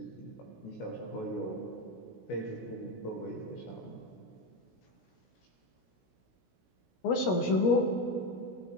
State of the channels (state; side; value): late; right; 16 ms